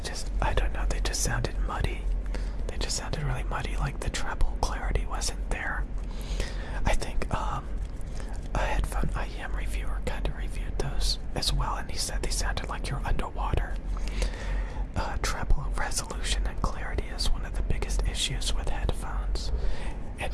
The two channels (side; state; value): both; identical; correlation 1.00